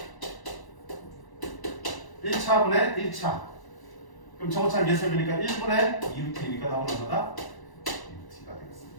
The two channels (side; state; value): right; late; 1.0 ms